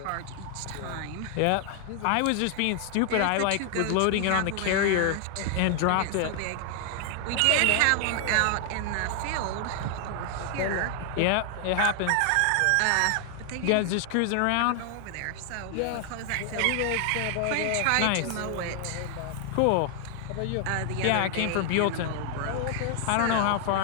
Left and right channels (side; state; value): both; different; correlation 0.00